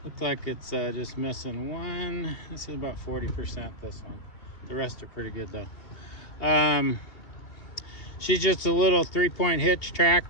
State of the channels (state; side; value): late; right; 2.7 ms